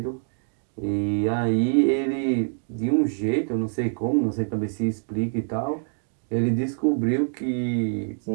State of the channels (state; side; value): silent; left; 62 dB below the other